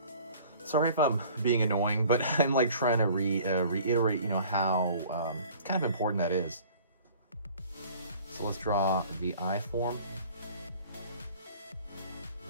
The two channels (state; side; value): inverted; both; correlation -0.49